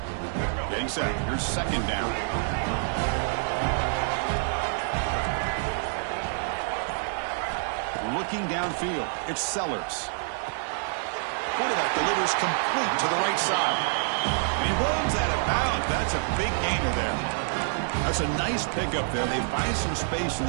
Set. Here's 2nd down. Looking downfield. It's Sellers. Quarterback delivers complete to the right side. And he runs out of bounds. That's a big gainer there. That's a nice pickup there. They find some space in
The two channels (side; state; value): left; silent; digital silence